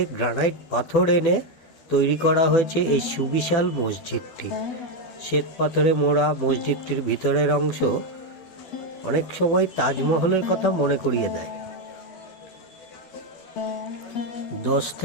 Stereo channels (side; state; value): right; late; 12 ms